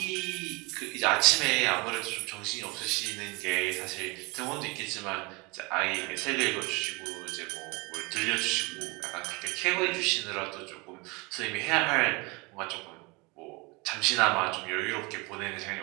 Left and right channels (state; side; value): quieter; left; 27.2 dB